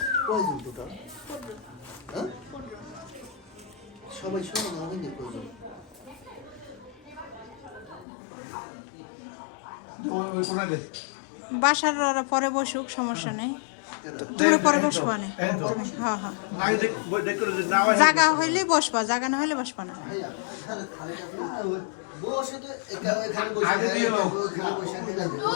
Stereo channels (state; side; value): drops out; right; at 8.1 s